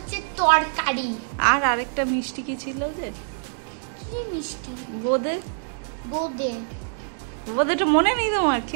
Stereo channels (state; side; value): silent; left; digital silence